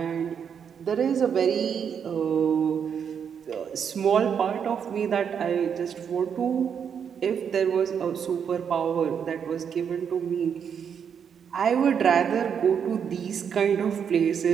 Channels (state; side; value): quieter; left; 7.5 dB